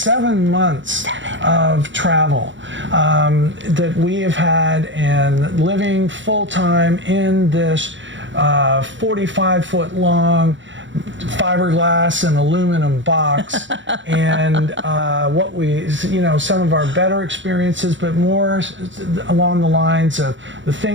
7 months of travel that we have had, and living full-time in this 45-foot long fiberglass and aluminum box, and what we, some of our better experiences, but more along the lines of the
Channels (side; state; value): left; late; 0.54 ms